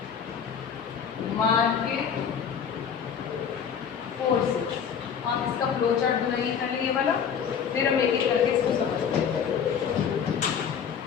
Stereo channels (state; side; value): quieter; right; 7.4 dB